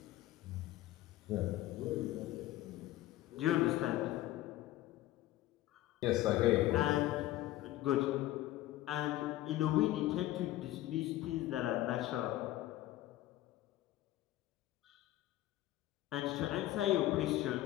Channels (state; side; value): quieter; right; 15.3 dB